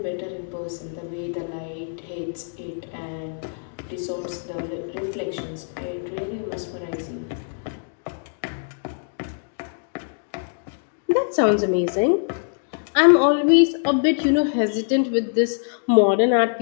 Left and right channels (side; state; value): right; silent; digital silence